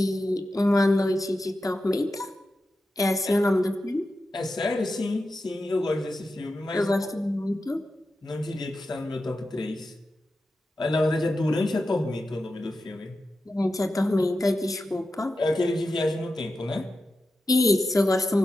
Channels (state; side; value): normal; both; correlation 0.91